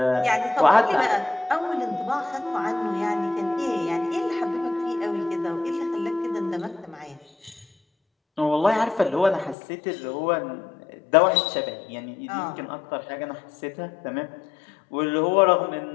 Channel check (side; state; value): right; drops out; at 9.6 s